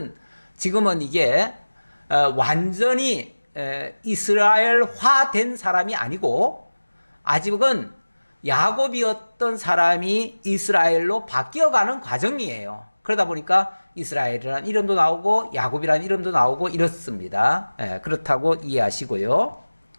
지금은 이게 완전히 이스라엘화 된 사람이 아니고 아직은 야곱이었던 사람이 이스라엘로 바뀌어가는 과정이에요. 그러다 보니까 이스라엘이라는 이름도 나오고 야곱이라는 이름도 나오고 이렇습니다. 그렇다고 이해하시고요.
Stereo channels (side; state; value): both; inverted; correlation -1.00